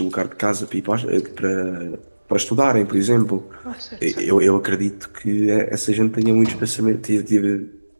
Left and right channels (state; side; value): inverted; both; correlation -1.00